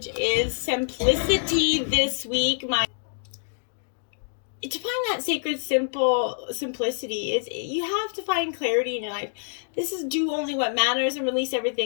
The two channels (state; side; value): silent; right; digital silence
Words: is simplicity this week. To find that sacred simplicity is you have to find clarity in your life. This is do only what matters and release